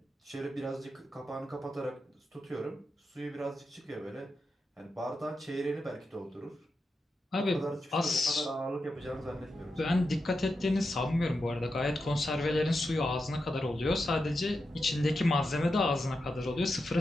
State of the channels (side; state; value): both; normal; correlation 0.88